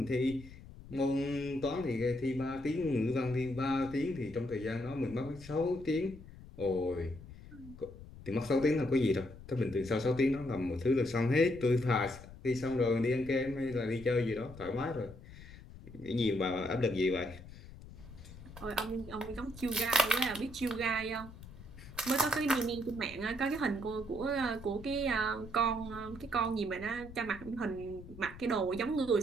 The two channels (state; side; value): noise; left; rumble, 16 dB below the sound